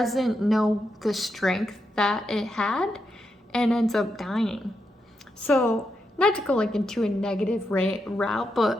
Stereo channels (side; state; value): both; normal; correlation 0.84